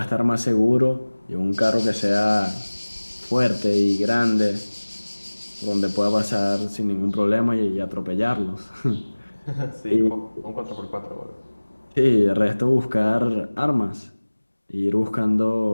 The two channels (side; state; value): both; inverted; correlation -1.00